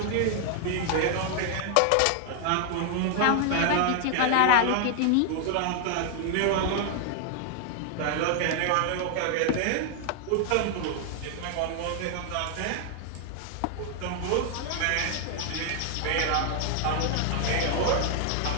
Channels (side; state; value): both; different; correlation 0.00